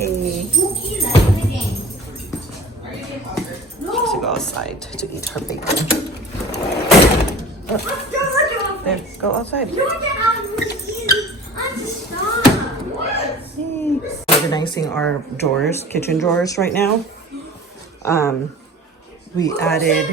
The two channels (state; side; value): normal; both; correlation 0.42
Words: To go outside to eat her bacon. There, go outside. Organizing our drawers, kitchen drawers right now. We